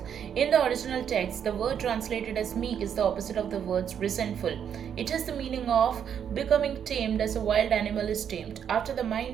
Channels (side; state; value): left; quieter; 8.4 dB